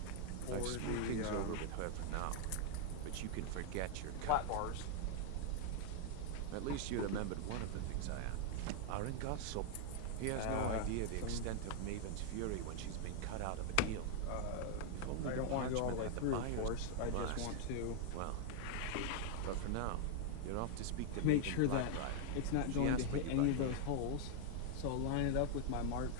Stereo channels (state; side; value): different; both; correlation 0.00